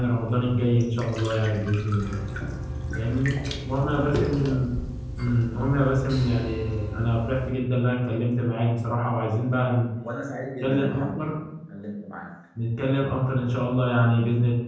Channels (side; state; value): both; identical; correlation 1.00